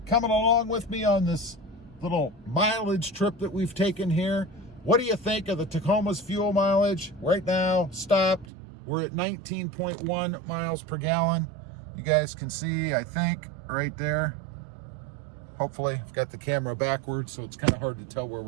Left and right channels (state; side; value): drops out; left; at 8.5 s